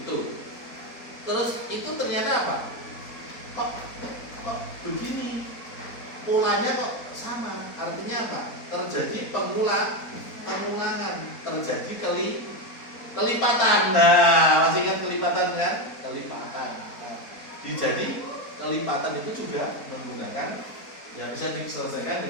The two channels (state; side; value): late; right; 4.2 ms